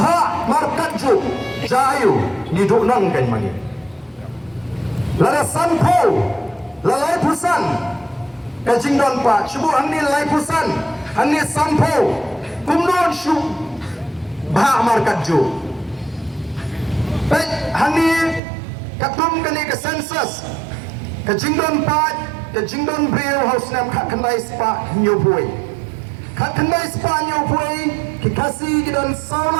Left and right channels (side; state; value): left; drops out; at 18.4 s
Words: markaju jayu niduk nang kan mani lada sanpo lalai pusan kajing don pa cubu angni lalai pusan angni sanpo kumnon shu bha markaju pet hani katum kani ke census kajing don pa kajing don brio house nam kha kanai spa nyoboi Kakandai Spanyol pui kikasi kidan